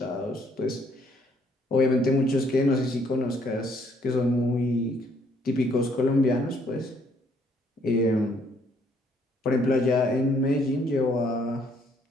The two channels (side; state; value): both; normal; correlation 0.66